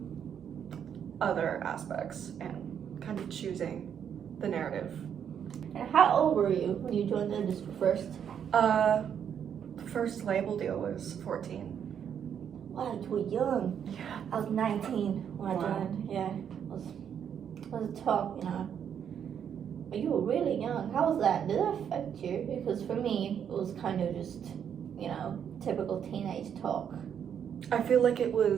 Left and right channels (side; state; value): left; quieter; 8.4 dB